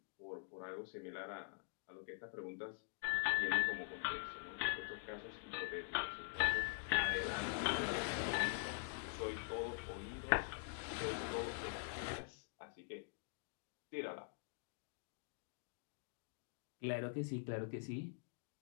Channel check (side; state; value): right; silent; digital silence